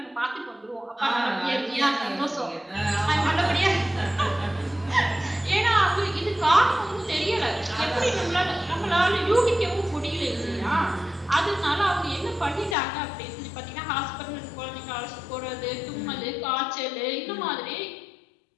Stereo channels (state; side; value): drops out; right; at 12.8 s